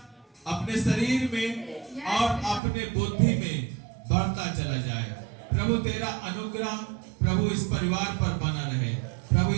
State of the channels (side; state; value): left; drops out; at 2.6 s